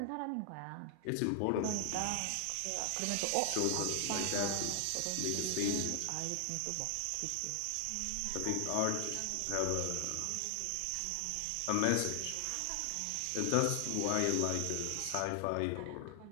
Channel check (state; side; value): different; both; correlation 0.00